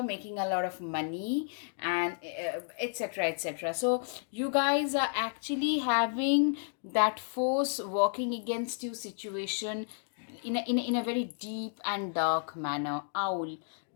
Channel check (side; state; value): right; silent; digital silence